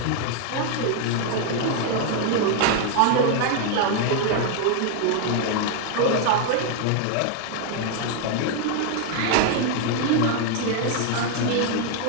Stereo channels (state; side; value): different; both; correlation 0.00